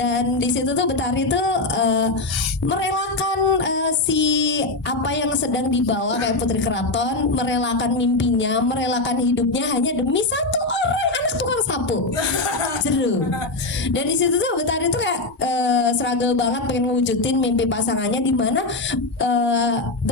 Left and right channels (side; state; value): right; quieter; 3.1 dB